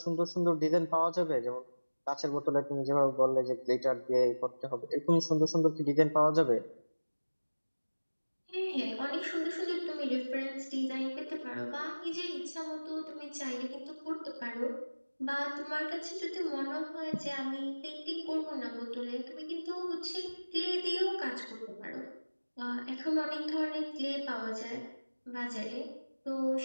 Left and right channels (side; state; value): both; inverted; correlation -1.00